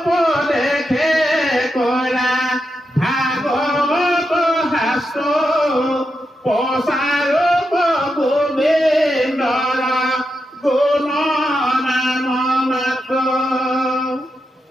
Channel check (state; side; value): normal; both; correlation 0.86